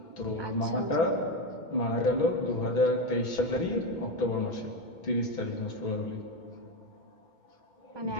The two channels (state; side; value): late; right; 2.2 ms